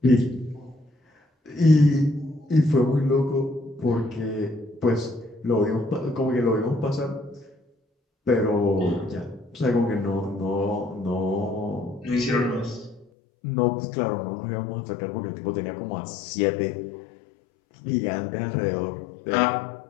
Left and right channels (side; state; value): right; drops out; at 13.1 s